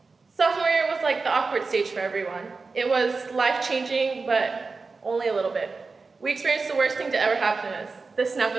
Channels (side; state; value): left; quieter; 4.2 dB